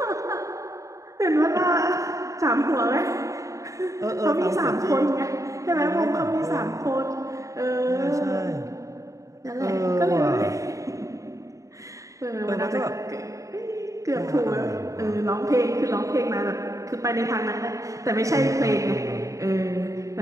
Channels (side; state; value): left; late; 0.16 ms